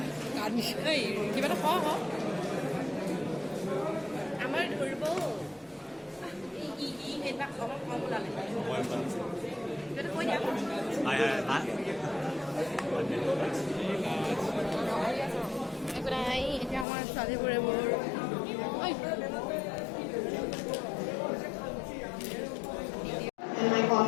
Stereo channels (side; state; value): right; drops out; at 16.9 s